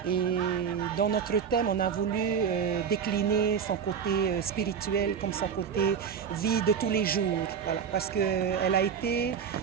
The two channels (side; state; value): left; quieter; 7.2 dB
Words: Et dans notre thème, on a voulu décliner son côté spirituel comme son côté vie de tous les jours. Voilà, parce qu'elle a été